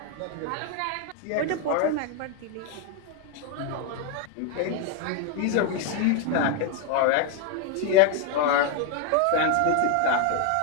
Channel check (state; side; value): different; both; correlation 0.01